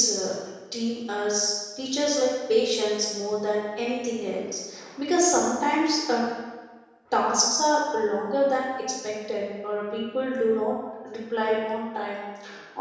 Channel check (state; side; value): identical; both; correlation 1.00